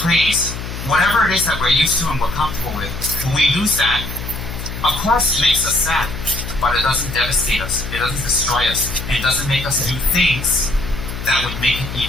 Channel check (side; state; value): left; noise; hum, 8 dB below the sound